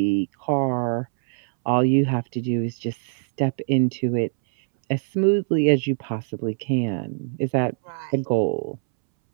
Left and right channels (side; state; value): left; silent; 63 dB below the other